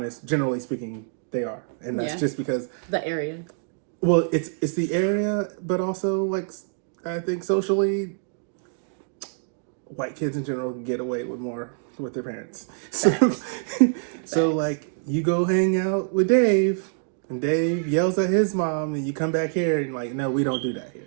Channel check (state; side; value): silent; left; digital silence